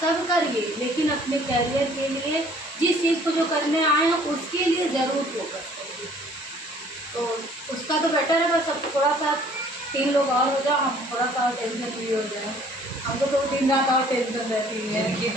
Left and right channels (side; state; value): both; normal; correlation 0.56